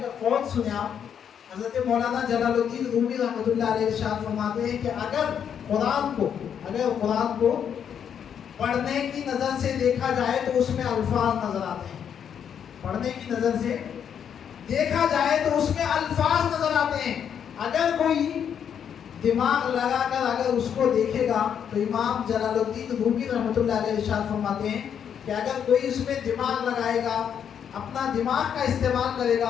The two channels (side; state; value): right; quieter; 8.3 dB